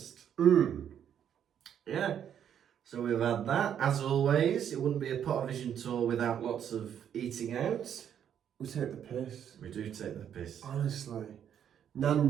Yeah. So we've had that. As always, it wouldn't be a Pottervision tour without lots of eating out. We take the piss. We do take the piss. Honestly.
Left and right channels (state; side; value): quieter; left; 9.1 dB